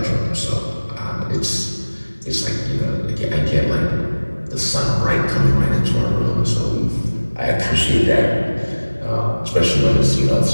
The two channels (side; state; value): both; inverted; correlation -1.00